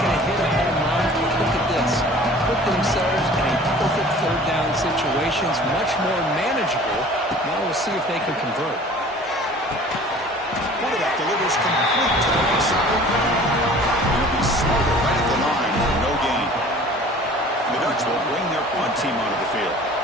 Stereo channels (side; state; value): both; normal; correlation 0.47